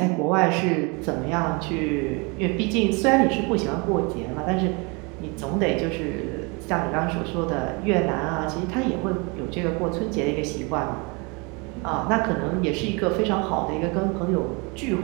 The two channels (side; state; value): left; quieter; 29.9 dB